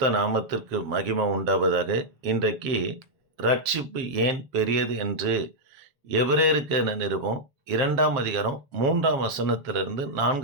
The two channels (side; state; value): left; late; 7.5 ms